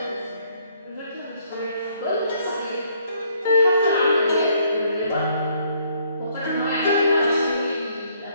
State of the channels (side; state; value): both; inverted; correlation -0.67